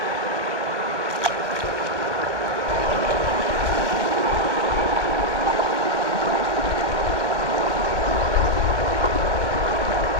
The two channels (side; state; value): left; late; 1.0 ms